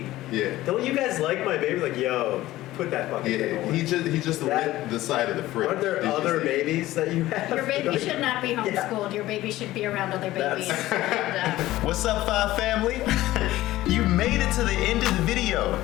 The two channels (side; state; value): right; quieter; 16.1 dB